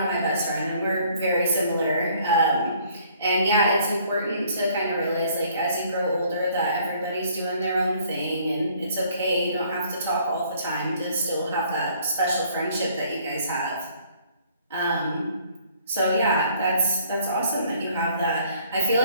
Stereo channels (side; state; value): both; inverted; correlation -0.60